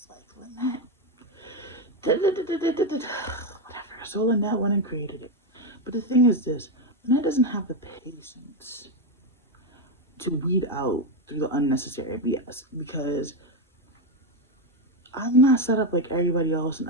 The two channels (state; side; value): normal; both; correlation 0.08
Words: like, Linette, whatever. So Linette went and created it. But the thing is this, Linette doesn't have the patience to weed out through the unnecessary BS because I'm not set up like everybody else, and